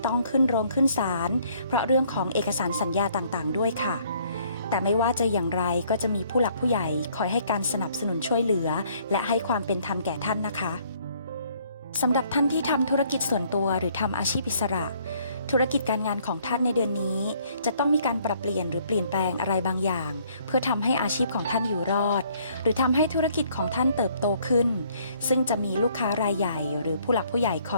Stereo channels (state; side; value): inverted; both; correlation -0.63